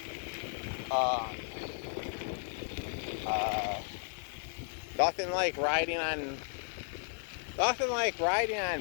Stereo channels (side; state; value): right; silent; 55 dB below the other